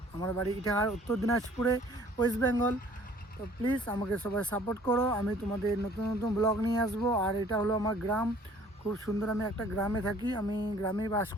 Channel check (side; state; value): both; normal; correlation 0.55